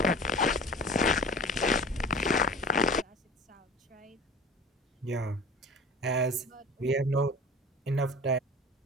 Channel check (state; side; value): normal; both; correlation 0.40